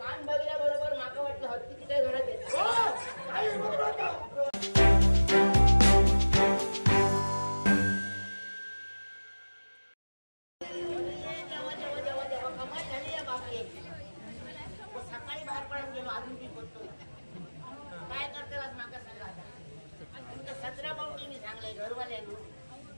कान बघल्या बरोबर माका वाटलं हत्तीची काय घरात येत. सकाळी बाहेर पडून गेलो अजून मी बोलतोय काय करतेलाच माका सांगा आता 17 पाऊटी मी सांगलंय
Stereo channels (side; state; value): both; inverted; correlation -1.00